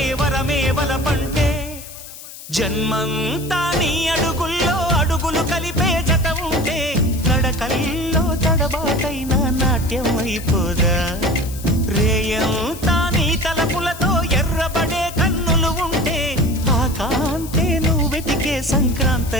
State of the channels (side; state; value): left; noise; hiss, 15 dB below the sound